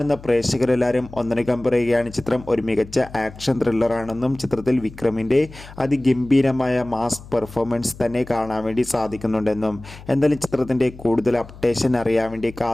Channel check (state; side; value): noise; left; hum, 18 dB below the sound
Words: പ്രേക്ഷകരെല്ലാവരും ഒന്നടങ്കം പറയുകയാണ് ചിത്രം ഒരു മികച്ച ആക്ഷൻ ത്രില്ലറാണെന്നും ചിത്രത്തിൽ വിക്രമിൻ്റെ അതിഗംഭീരമായ മാസ് പെർഫോമൻസ് തന്നെ കാണാൻ വേണ്ടി സാധിക്കുന്നുണ്ടെന്നും. എന്തായാലും ചിത്രത്തിൻ്റെ കൂടുതൽ അപ്ഡേഷൻ അറിയാൻ വേണ്ടി